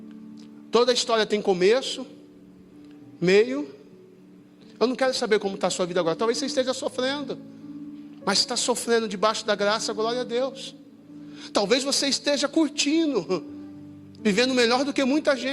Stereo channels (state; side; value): identical; both; correlation 1.00